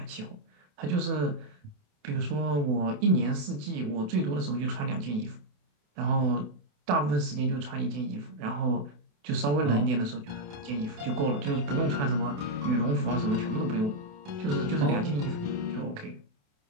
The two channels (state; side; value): late; left; 28 ms